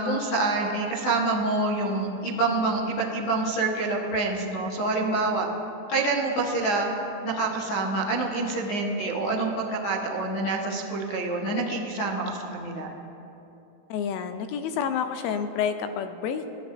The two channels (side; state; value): right; late; 20 ms